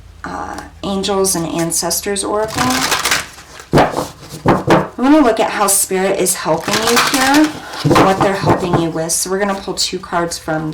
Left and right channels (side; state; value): both; identical; correlation 1.00